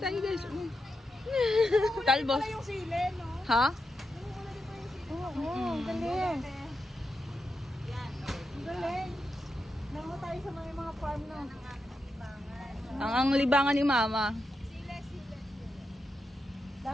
guys. Talbos. pala yung sili, no? Ha? Oo, galing. Galing. Nango tayo sa mga farm na. Ang libangan ni Mama.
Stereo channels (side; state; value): both; normal; correlation 0.86